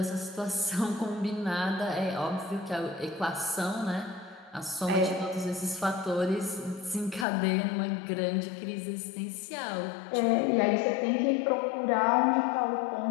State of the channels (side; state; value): right; drops out; at 7.2 s